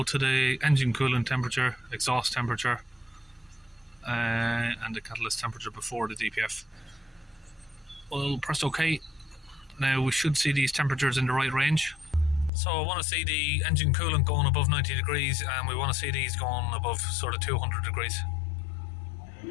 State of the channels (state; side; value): drops out; right; at 12.5 s